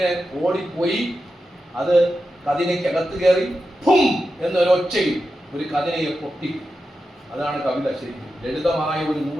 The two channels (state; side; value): normal; both; correlation 0.90